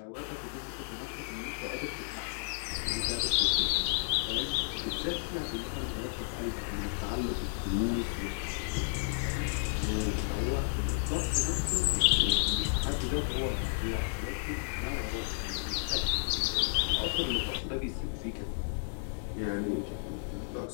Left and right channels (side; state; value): right; silent; digital silence